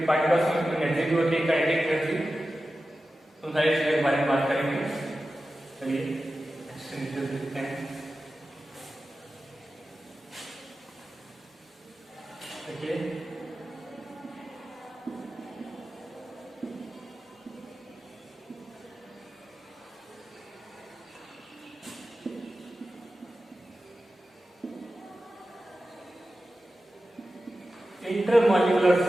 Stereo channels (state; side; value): normal; both; correlation 0.93